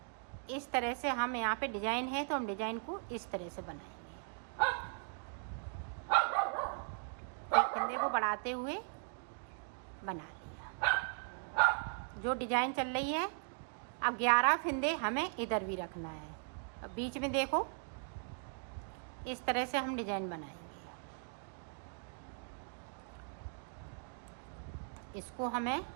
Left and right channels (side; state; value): left; silent; 52 dB below the other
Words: इस तरह से हम यहाँ पे डिजाइन है तो हम डिजाइन को इस तरह से बनाएंगे। एक फिंदे को बढ़ाते हुए बना लिया जो डिजाइन चल रही है। अब 11 फिंदे हमें इधर भी रखना है। अब बीच में देखो इस तरह से हम डिजाइन बनाएंगे। इसको हमें